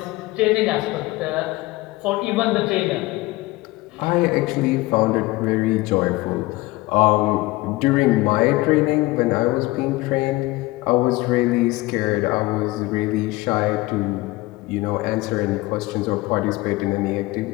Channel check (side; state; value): right; quieter; 20.3 dB